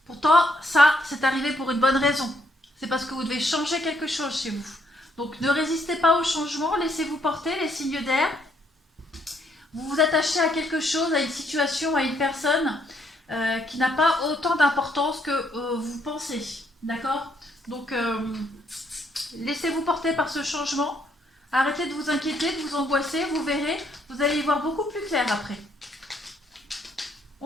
Pourtant, ça, c'est arrivé pour une bonne raison. C'est parce que vous devez changer quelque chose chez vous. Donc, ne résistez pas au changement, laissez-vous porter les signes d'air. Vous vous attachez à quelque chose, à une situation, à une personne qui n'a pas autant d'importance que vous pensez. D'accord? Donc, laissez-vous porter par ce changement. Arrêtez de vous inquiéter, de vous angoisser. Vous verrez, vous allez y voir beaucoup plus clair après.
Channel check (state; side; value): normal; both; correlation 0.71